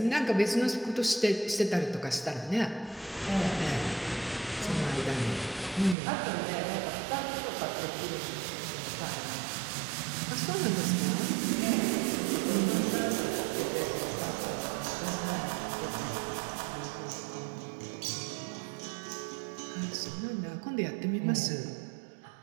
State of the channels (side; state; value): left; drops out; at 6.0 s